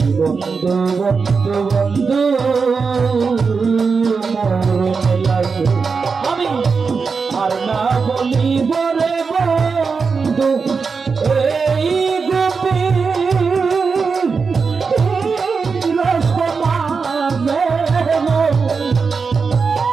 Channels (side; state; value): left; quieter; 5.1 dB